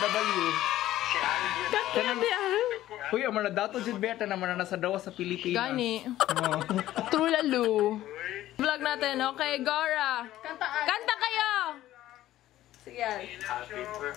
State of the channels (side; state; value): right; quieter; 14.2 dB